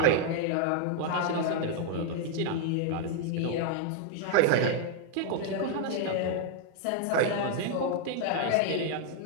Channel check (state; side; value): different; both; correlation 0.00